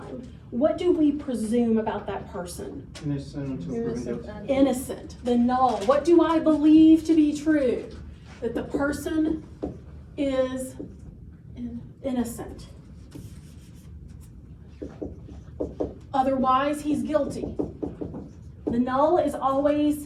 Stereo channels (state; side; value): identical; both; correlation 1.00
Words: what do we presume about that person? Innocent until proven guilty. Innocent, the null. What do I believe to be true? That the person is innocent. Otherwise, he's guilty. The null is